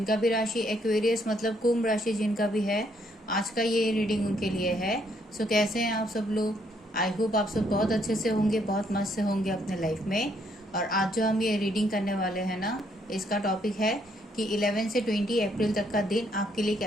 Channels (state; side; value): normal; both; correlation 0.71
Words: भी राशि एक्वेरियस मतलब कुंभ राशि जिनका भी है, आज का ये रीडिंग उनके लिए है। सो कैसे हैं आप सब लोग? आई होप आप सब बहुत अच्छे से होंगे, बहुत मस्त से होंगे अपने लाइफ में। और आज जो हम ये रीडिंग करने वाले हैं ना, इसका टॉपिक है कि 11 से 20 अप्रैल तक का दिन आपके लिए